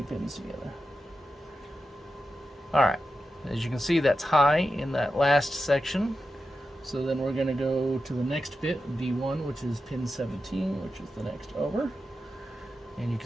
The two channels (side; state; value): both; normal; correlation 0.90